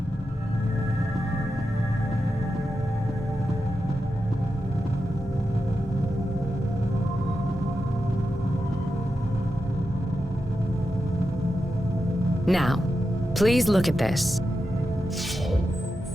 Now, please look at this.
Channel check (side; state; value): both; normal; correlation 0.89